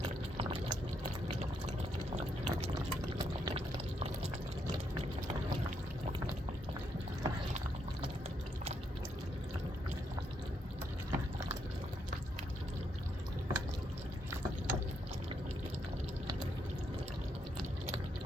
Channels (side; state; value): both; normal; correlation 0.77